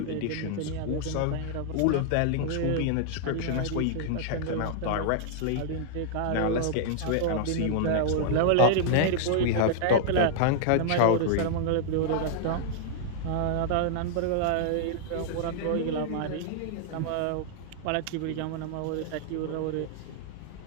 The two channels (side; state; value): both; different; correlation -0.01